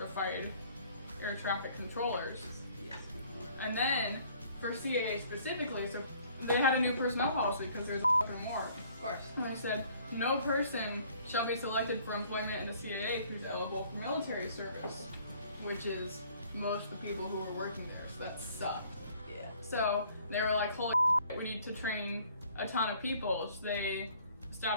air traffic controllers. And then for CAA specifically, so they had a new personnel policy because there's a fucking war. Of course. And they said, no person shall be selected for employment in the CAA who's eligible for military service, which is most of the people who were working there, so that sucked. Yeah. So they were like, holy shit, we need to train a ton of people. So they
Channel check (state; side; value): inverted; both; correlation -0.58